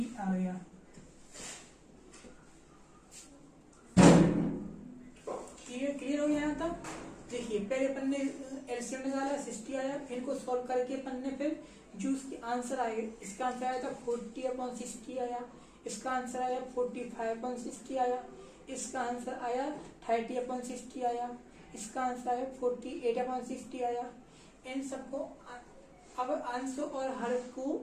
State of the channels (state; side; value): identical; both; correlation 1.00